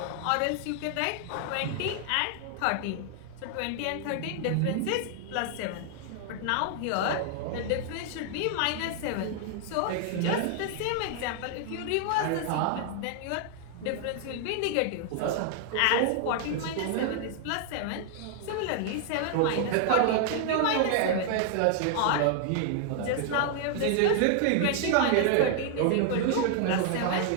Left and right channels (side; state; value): both; different; correlation 0.00